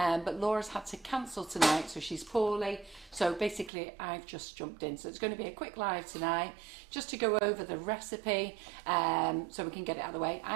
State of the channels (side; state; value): left; drops out; at 3.7 s